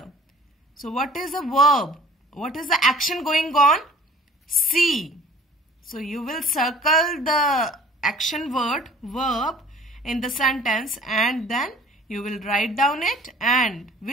So what is the verb? What is the action going on? See. So you will circle the action word, verb in the sentence, and then you will write down it and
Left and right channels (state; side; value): normal; both; correlation 0.50